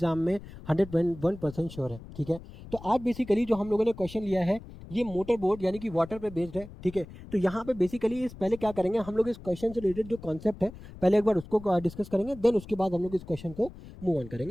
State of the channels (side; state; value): left; noise; rumble, 16 dB below the sound